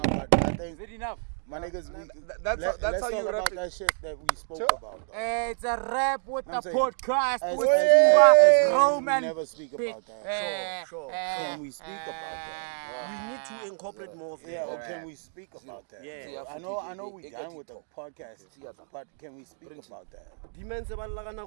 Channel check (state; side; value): silent; left; digital silence